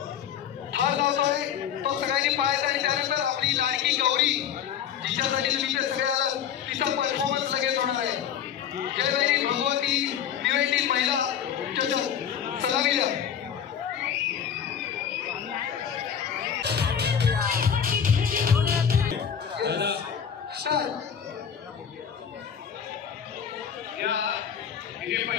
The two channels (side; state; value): right; quieter; 8.4 dB